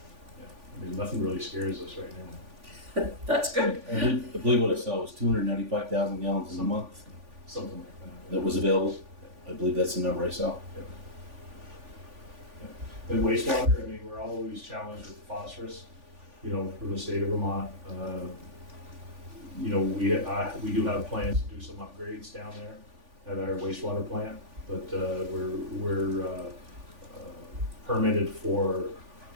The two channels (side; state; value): left; late; 3.5 ms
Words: Yeah, I mean, nothing really scares us right now. That's good. I believe what I saw was 295,000 gallons in a month Something like that. that was available. I believe that's the number I saw. And wastewater, I mean, we're always challenged with phosphorus, you know, from the state of Vermont. You know, we do have plans to do some upgrades down there at our wastewater plant, but we're permitted for,